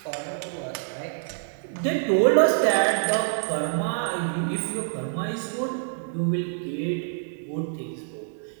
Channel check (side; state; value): left; silent; digital silence